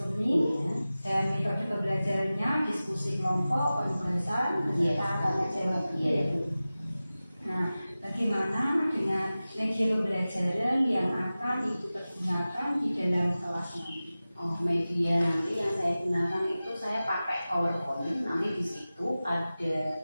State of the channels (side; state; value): both; inverted; correlation -0.96